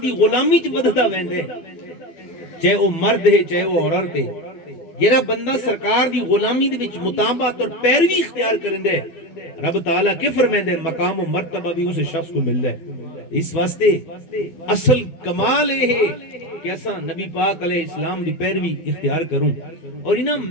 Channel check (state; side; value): late; right; 12 ms